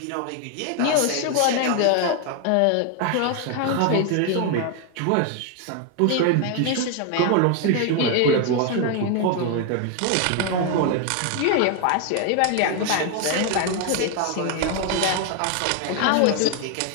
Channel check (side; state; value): both; different; correlation 0.01